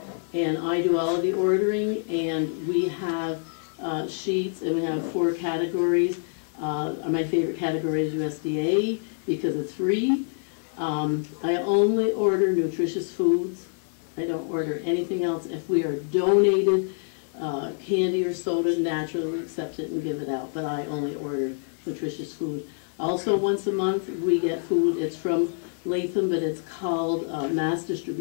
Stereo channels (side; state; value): right; silent; 61 dB below the other